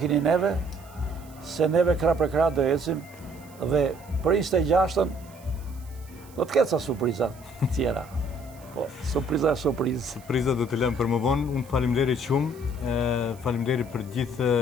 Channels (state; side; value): noise; right; hiss, 25 dB below the sound